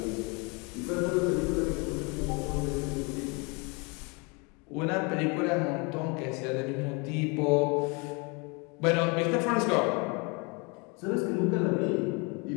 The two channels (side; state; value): right; quieter; 30.7 dB